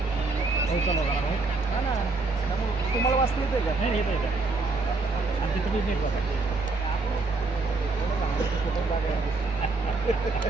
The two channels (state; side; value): quieter; left; 3.6 dB